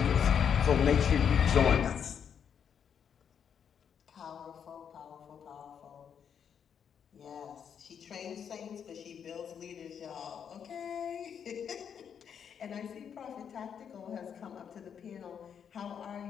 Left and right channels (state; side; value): quieter; right; 7.8 dB